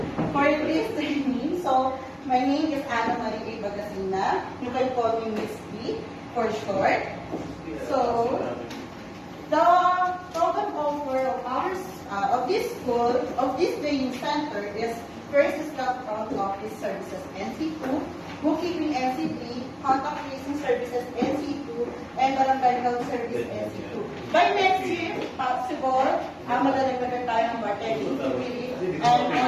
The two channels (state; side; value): identical; both; correlation 1.00